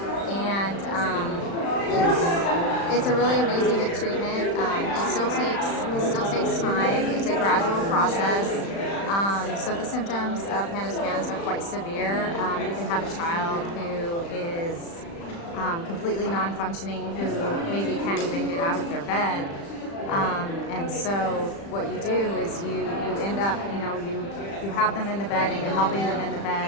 and it's a really amazing treatment. It still takes time. It's a gradual process. So the symptoms of PANDAS are quite severe. You can have a child who is completely non-functioning, who maybe can't even get out of their bed. And so what you do is you end up, you have them in the bed and you're helping them in the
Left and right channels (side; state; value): right; late; 35 ms